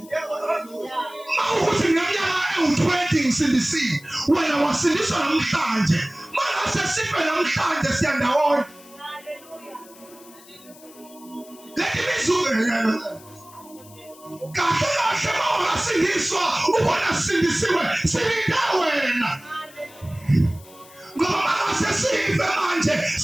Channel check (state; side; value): noise; left; hiss, 23 dB below the sound